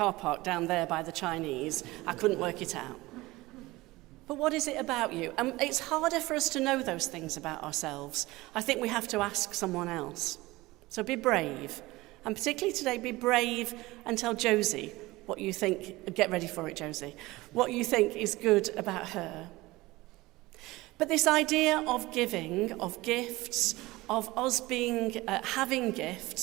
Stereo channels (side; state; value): left; quieter; 20.0 dB